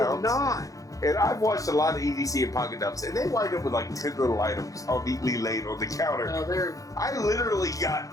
not. And I've watched a lot of EDC and pocket dumps, and they wind up with like 10 little items all neatly laid on the counter. No, I literally got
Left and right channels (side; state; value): right; late; 0.17 ms